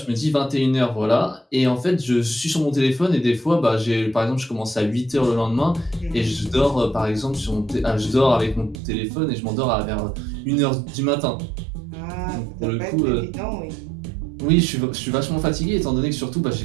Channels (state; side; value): drops out; left; at 8.8 s